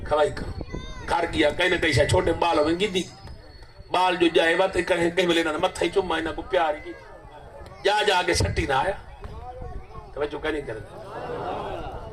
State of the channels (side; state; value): both; identical; correlation 1.00